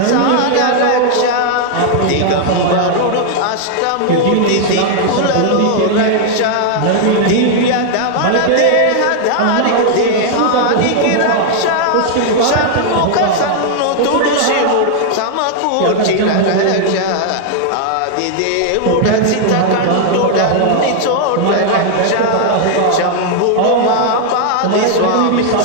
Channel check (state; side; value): different; both; correlation 0.00